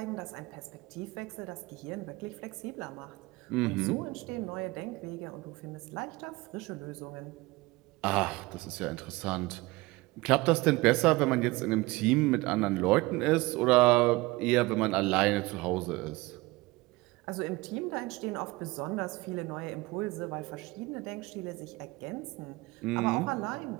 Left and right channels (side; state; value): left; quieter; 21.6 dB